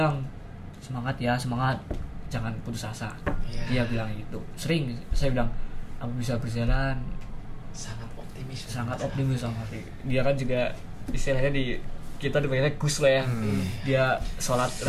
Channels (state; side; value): identical; both; correlation 1.00